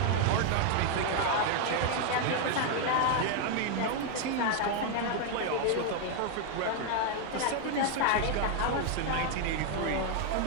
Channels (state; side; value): different; both; correlation 0.01